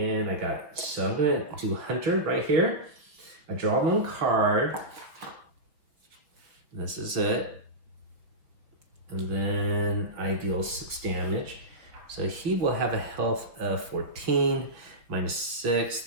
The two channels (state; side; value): late; left; 5.6 ms